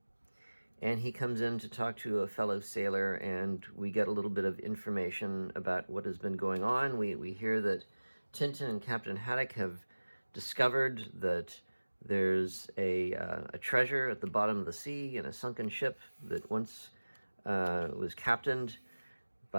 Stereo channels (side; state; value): both; inverted; correlation -1.00